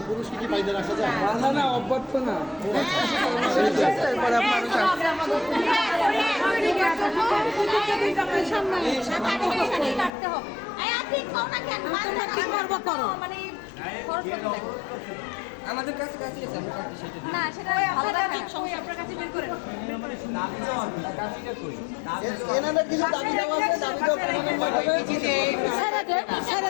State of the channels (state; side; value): drops out; right; at 10.1 s